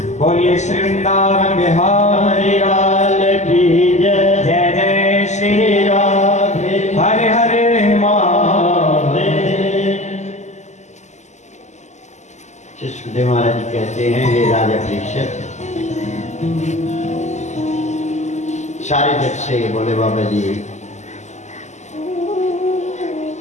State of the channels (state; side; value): late; right; 0.34 ms